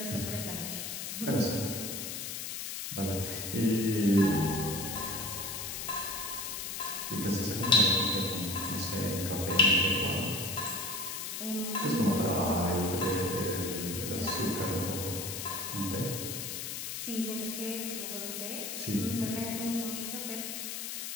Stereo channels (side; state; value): left; noise; hiss, 5 dB below the sound